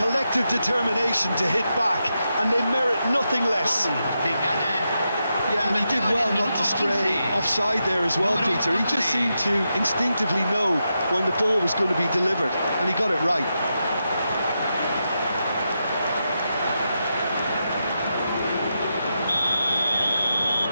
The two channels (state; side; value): inverted; both; correlation -0.86